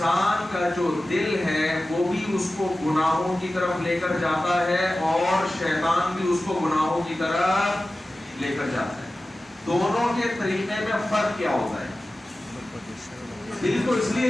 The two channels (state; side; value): normal; both; correlation 0.95